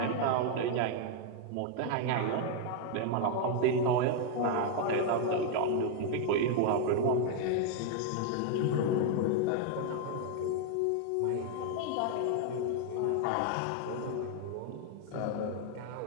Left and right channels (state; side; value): different; both; correlation 0.00